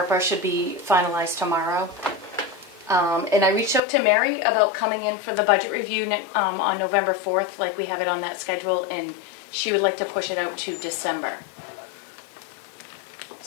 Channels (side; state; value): right; drops out; at 3.8 s